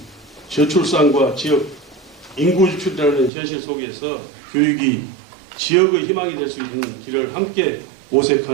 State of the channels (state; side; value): drops out; left; at 3.3 s